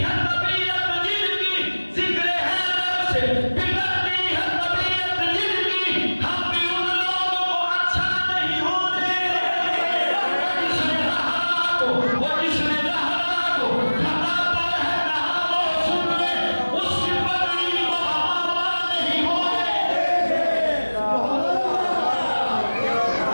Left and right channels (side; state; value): both; inverted; correlation -1.00